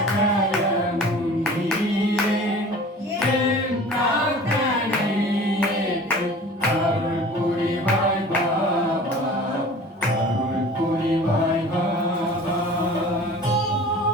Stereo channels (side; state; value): both; normal; correlation 0.42